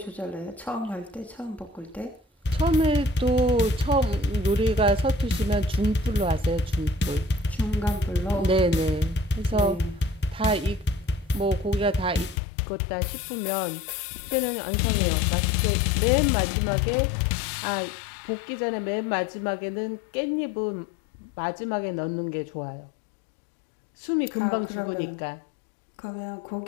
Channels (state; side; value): drops out; right; at 12.4 s